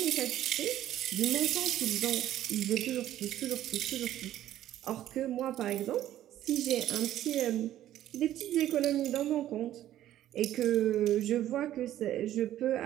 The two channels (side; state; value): left; quieter; 12.7 dB